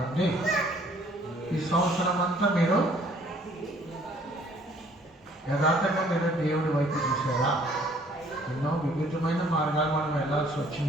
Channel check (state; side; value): normal; both; correlation 0.60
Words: ఈ సంవత్సరం అంతా మీరు యథార్థంగా మీరు దేవుడి వైపు చూసారా? ఎన్నో వివిధమైన మార్గాలు మనం వెళ్ళాల్సి